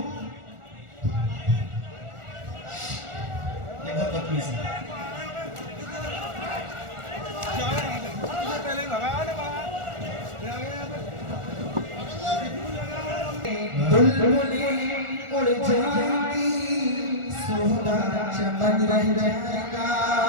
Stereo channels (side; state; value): left; late; 1.4 ms